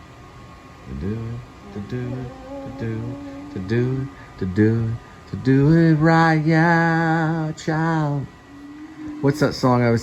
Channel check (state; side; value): identical; both; correlation 1.00